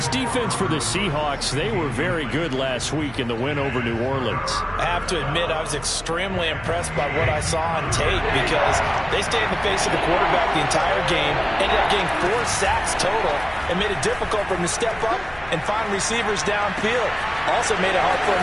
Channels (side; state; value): left; noise; hum, 20 dB below the sound